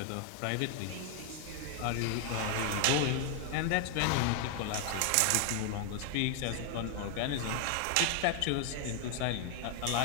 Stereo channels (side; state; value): both; different; correlation 0.00